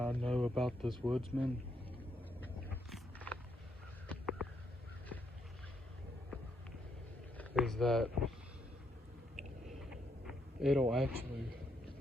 know about this Woodsman is that it'll actually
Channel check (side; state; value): both; normal; correlation 0.75